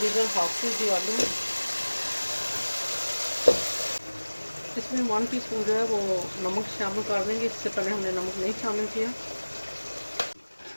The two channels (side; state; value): both; inverted; correlation -1.00